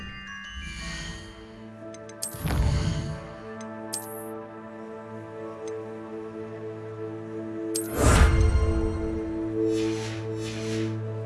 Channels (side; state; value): both; identical; correlation 1.00